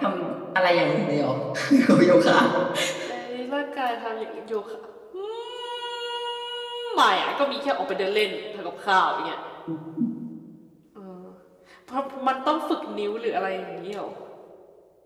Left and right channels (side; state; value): both; identical; correlation 1.00